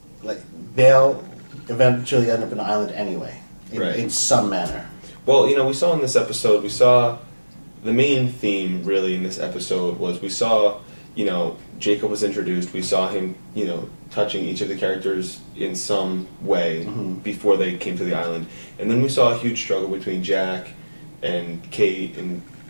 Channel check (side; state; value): both; inverted; correlation -1.00